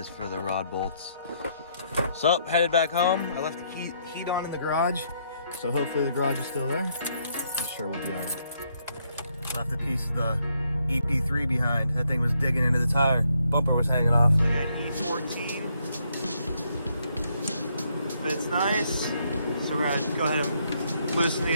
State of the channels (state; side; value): inverted; both; correlation -0.73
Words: for the rod bolts. So, headed back home. I left the heat on in the garage, so hopefully the garage is still there. I'm sure we'll be all right. Left a piece of the EP3 behind. That thing was digging into the tire. Bumper was hanging off. I got E14. Fits nice. So we're gonna go ahead and loosen